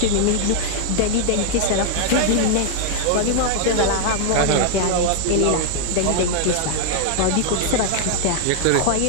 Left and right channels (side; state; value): both; different; correlation 0.00